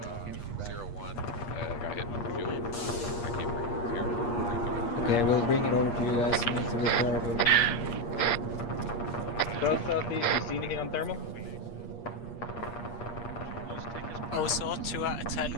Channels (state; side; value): late; right; 8.5 ms